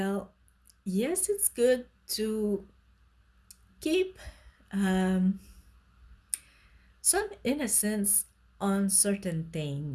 yes, it's good to keep um, some innocence on certain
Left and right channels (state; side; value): identical; both; correlation 1.00